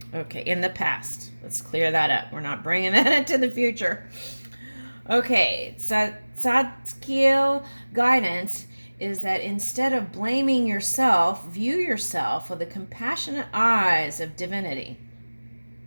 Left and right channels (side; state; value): both; inverted; correlation -1.00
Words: Okay, in the past. Let's clear that up. We're not bringing that into the future. Okay, Tzadkiel guidance is that instead of blaming yourself, view yourself with the compassionate eyes of divinity.